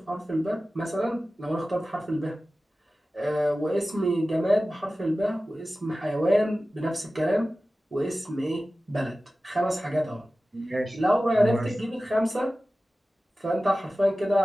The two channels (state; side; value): normal; both; correlation 0.96